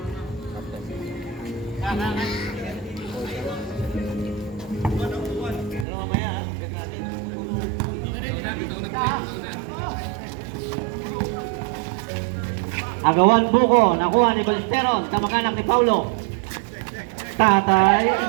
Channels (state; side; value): drops out; left; at 5.9 s